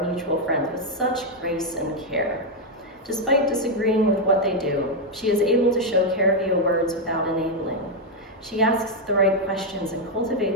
mutual friend with such grace and care. Despite disagreeing with what they do, she is able to show care via words without enabling. She asks the right questions and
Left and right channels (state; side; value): normal; both; correlation 0.01